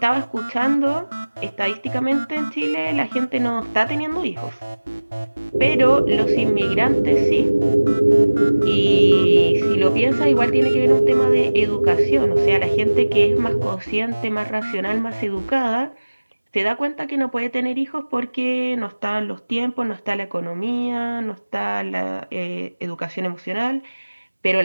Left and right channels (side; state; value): both; inverted; correlation -1.00